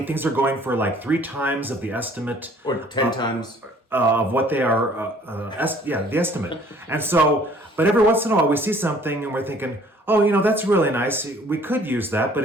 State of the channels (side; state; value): both; normal; correlation 0.56